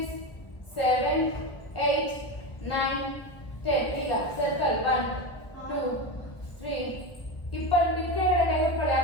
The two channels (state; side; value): late; right; 1.2 ms